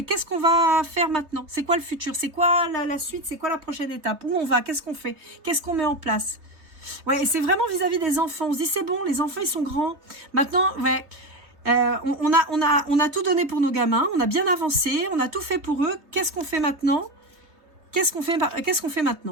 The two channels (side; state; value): left; late; 3.1 ms